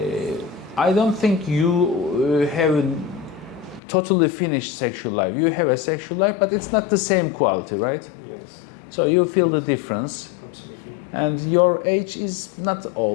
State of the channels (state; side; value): drops out; right; at 3.8 s